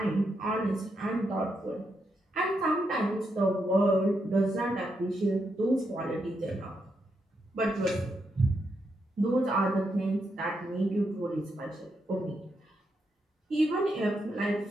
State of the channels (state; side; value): normal; both; correlation 0.82